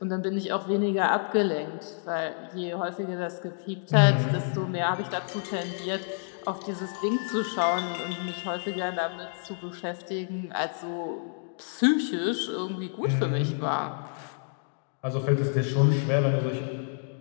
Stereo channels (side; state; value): right; silent; digital silence